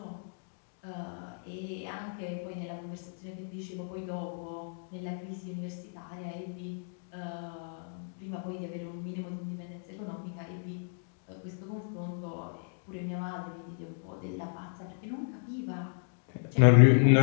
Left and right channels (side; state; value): right; silent; digital silence